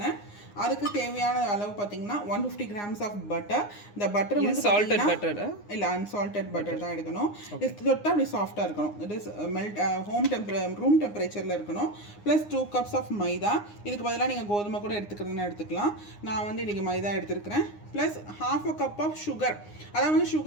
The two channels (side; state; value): right; late; 9.7 ms